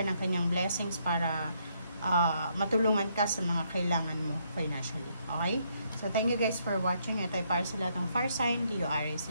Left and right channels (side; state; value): both; inverted; correlation -0.73